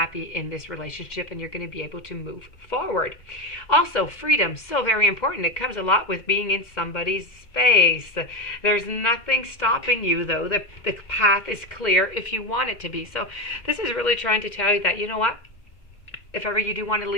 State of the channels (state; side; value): late; right; 2.1 ms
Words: in this relationship, and you're going to be able to move forward. Also, freedom, so very important. It comes a lot with being in somebody's space. There's nothing stopping you, though. The path is clear if you want it to be. So this is really trying to tell you that, you know what, if ever you do want to